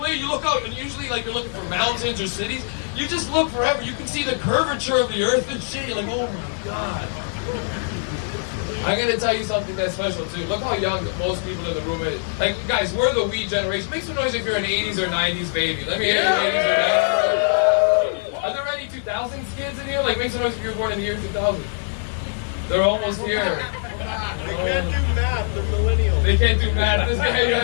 you look out, and usually, like, you're looking for mountains or cities. You just look forever. You can see the curvature of the earth and shit. You're like, oh my god. I'm gonna tell you something that's special too. Look how young most people in the room is. Like, guys, we're the weed generation. Make some noise if you're an 80s or 90s baby. Let me hear your 80s or 90s. Are there any 2000s kids in here? Like, make some noise if you were born in the year 2000. They're almost here. They can't do math. They're millennials. They can't do math. This guy,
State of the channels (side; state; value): right; silent; 64 dB below the other